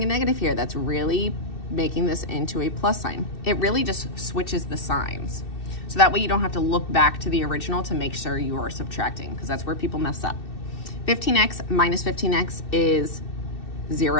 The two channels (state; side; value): late; right; 2.7 ms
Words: a negative here, that's really making this into a plus sign. It really just switches the signs. So that way you don't have to look back to the original to make sure you are subtracting, because that's where people mess up. 15x minus 15x is